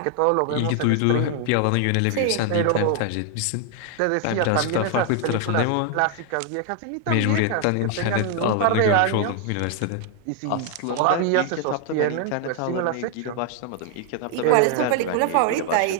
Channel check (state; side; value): different; both; correlation 0.00